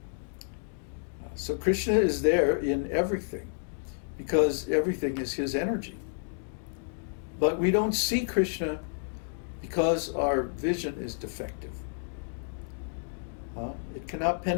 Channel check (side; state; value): right; silent; digital silence